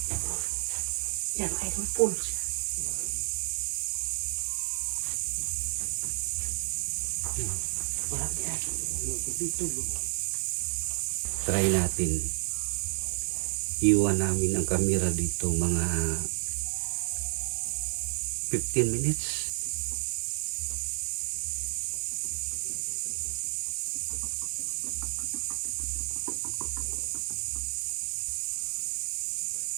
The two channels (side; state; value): left; silent; digital silence